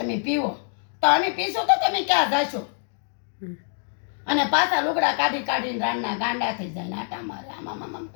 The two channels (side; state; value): right; silent; 62 dB below the other